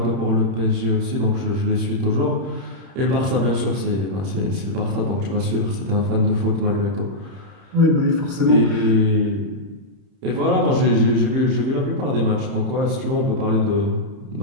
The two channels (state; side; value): late; left; 30 ms